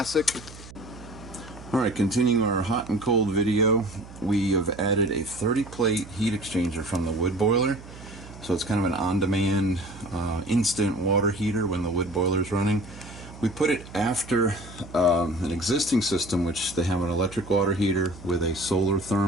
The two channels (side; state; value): right; noise; hum, 17 dB below the sound